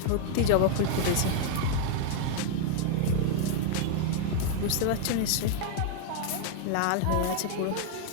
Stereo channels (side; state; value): both; different; correlation 0.00